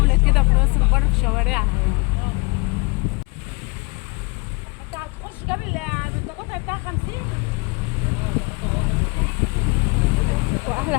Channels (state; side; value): quieter; right; 29.9 dB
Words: كده في راس البر في شوارعها يعني. انت هتخش جاب القطع بتاع 50.